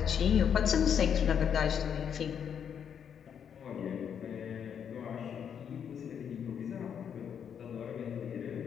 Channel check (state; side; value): quieter; right; 8.0 dB